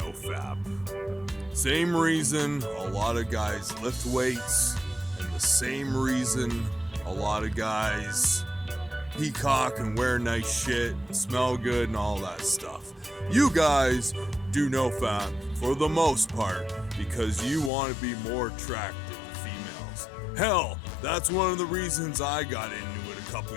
Fap. Same reason a lot of guys lift weights, and the same reason a lot of guys peacock and wear nice shit, and smell good and all that stuff. You guys do No Fap for the most part because you want to be more attractive to females. Hell, that's one of the reasons I got into it a couple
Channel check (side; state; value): right; drops out; at 17.7 s